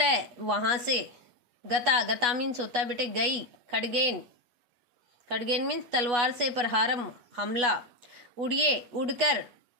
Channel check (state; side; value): late; left; 8.3 ms